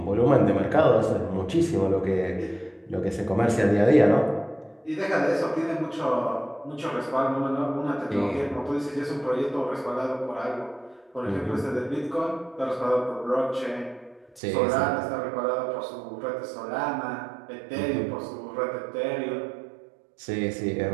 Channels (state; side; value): drops out; left; at 14.4 s